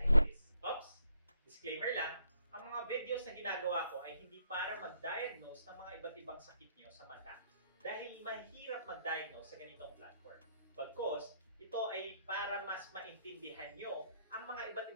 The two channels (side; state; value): both; inverted; correlation -0.71